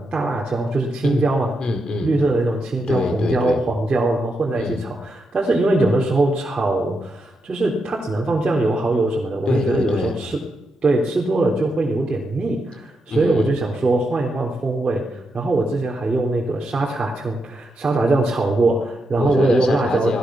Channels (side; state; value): both; normal; correlation 0.84